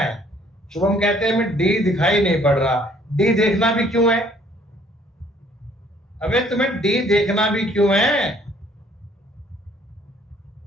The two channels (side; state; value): both; normal; correlation 0.60